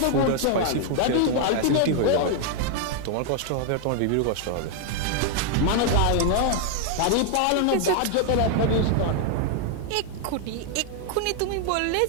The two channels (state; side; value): different; both; correlation 0.00